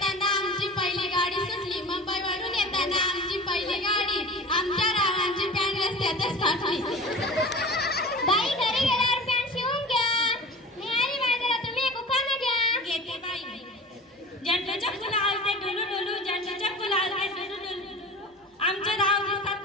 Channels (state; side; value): normal; both; correlation 0.37